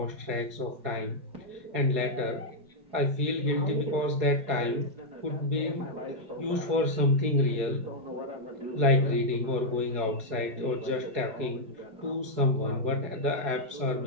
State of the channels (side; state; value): left; late; 4.8 ms